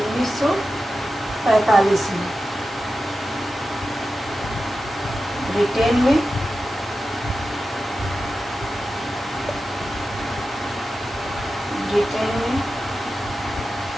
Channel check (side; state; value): both; normal; correlation 0.92